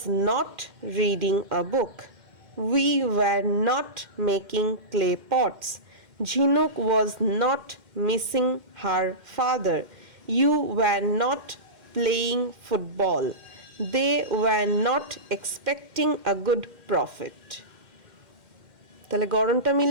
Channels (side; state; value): left; late; 2.1 ms